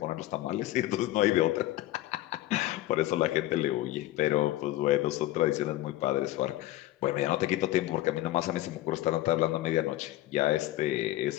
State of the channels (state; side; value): quieter; right; 16.0 dB